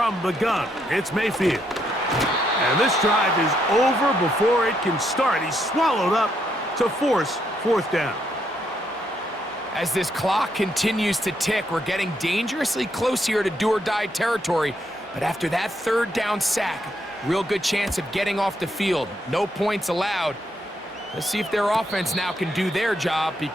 the gun, it's Mayfield. And this drive is over before it can start. He's swallowed up to force fourth down. As this clock continues to tick, we're getting dangerously close here to do-or-die territory. But after that third down sack, real good chance of getting off the field. No points allowed. Let's see if their offense now can do their job,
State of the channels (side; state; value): both; normal; correlation 0.76